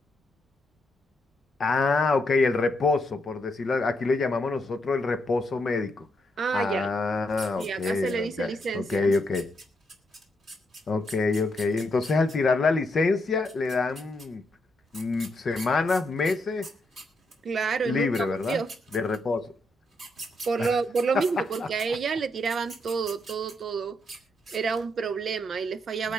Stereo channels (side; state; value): both; normal; correlation 0.79